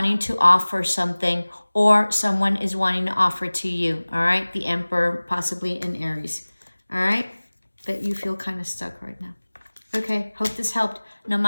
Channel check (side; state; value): both; inverted; correlation -1.00